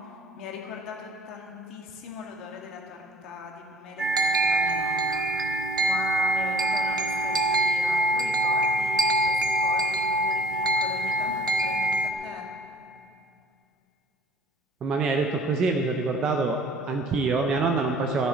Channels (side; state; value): both; normal; correlation 0.50